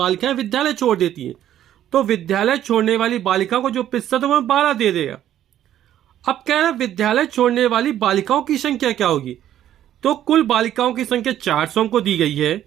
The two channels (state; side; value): quieter; left; 11.6 dB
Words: विद्यालय छोड़ देती हैं, तो विद्यालय छोड़ने वाली बालिकाओं को जो प्रतिशत है वह 12 दे देगा। अब कह रहा है विद्यालय छोड़ने वाली बालिकाओं की संख्या क्या होगी। तो कुल बालिकाओं की संख्या 400 हमको दी गई है,